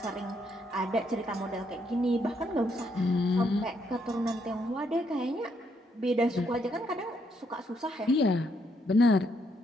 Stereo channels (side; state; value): both; normal; correlation 0.74